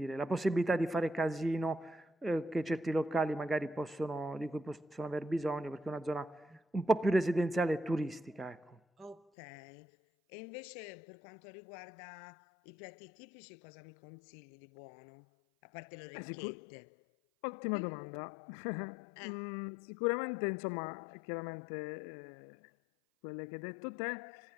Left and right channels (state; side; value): drops out; right; at 9.2 s